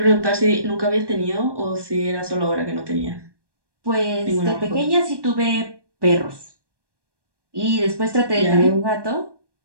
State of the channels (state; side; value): late; left; 1.2 ms